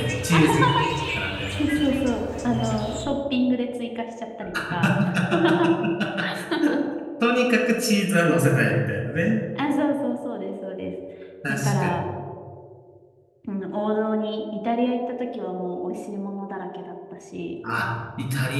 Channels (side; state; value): both; identical; correlation 1.00